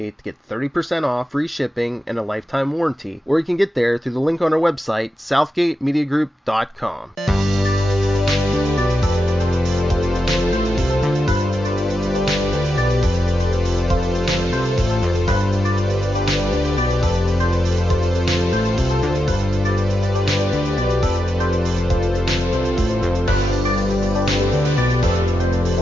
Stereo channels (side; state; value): both; normal; correlation 0.88